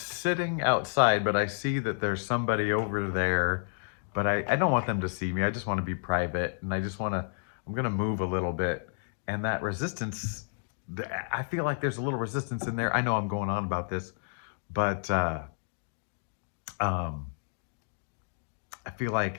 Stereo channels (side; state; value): right; silent; digital silence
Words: outside, but I see that there's somebody over there, but I don't want them to see me. I just want to be private, and I just want to, I'm going to move a little bit. And that resistance, I feel like there's a little resistance in there. I know I'm going on about this, but um, I feel